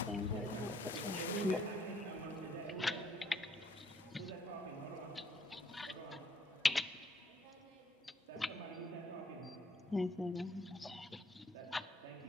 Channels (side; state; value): both; normal; correlation 0.67